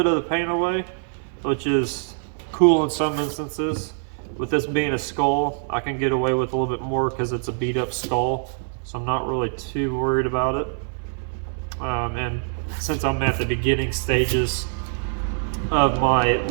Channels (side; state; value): left; silent; 63 dB below the other